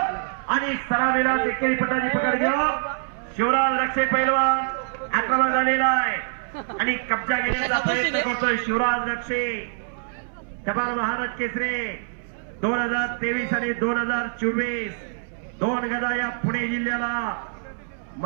आणि सलामीला एकेरी पटाची पकड घेऊन शिवराज रक्षे पैलवान आक्रमण झालेला आहे आणि कब्जा घेण्याचा प्रयत्न करतोय शिवराज रक्षे. जबाल महाराज केसरी 2023 आणि 2024 दोन गदा या पुणे जिल्ह्याला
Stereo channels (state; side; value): silent; left; 62 dB below the other